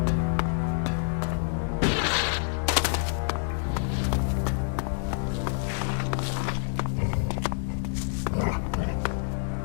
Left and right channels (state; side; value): silent; right; 60 dB below the other